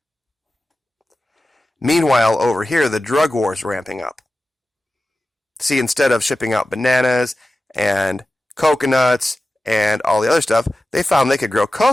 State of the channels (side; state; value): both; normal; correlation 0.94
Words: Meanwhile, over here, the drug war is ramping up. See, instead of shipping out bananas and coconuts and all the other stuff, they found they could grow